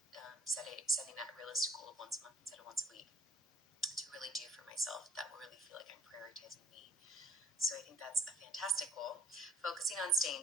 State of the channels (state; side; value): normal; both; correlation 0.59